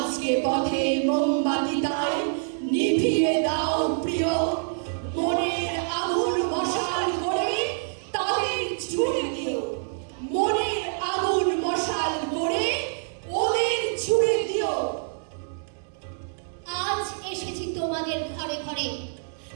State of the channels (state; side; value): silent; left; 61 dB below the other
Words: পথে মোমবাতি তাই নিভিয়ে দাও প্রিয়, মনের আগুন মশাল করে তাদের ছুড়ে দিও, মনের আগুন মশাল করে ওদের ছুড়ে দিও। আজ এসেছি তোমাদের ঘরে ঘরে